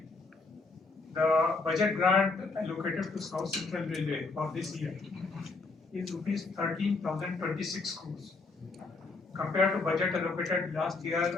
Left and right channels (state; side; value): quieter; right; 3.8 dB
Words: The budget grant allocated to South Central Railway for this year is rupees 13,026 crores compared to budget allocated last